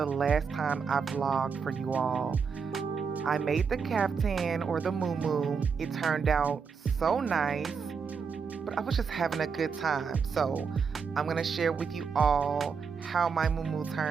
last time I vlogged for you all. I made the caftan or the mumu. It turned out so nice, but I was just having a good time. So I'm going to share with you all how my mumu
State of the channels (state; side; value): quieter; left; 5.9 dB